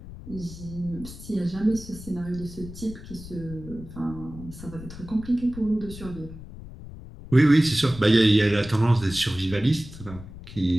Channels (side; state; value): left; noise; rumble, 14 dB below the sound